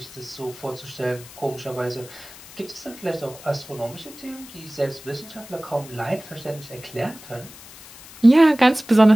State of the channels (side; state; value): left; noise; hiss, 18 dB below the sound